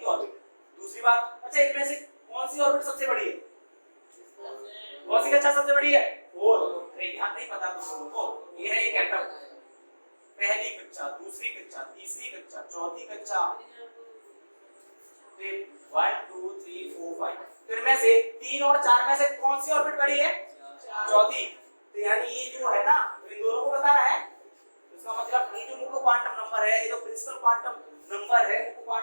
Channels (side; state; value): both; inverted; correlation -1.00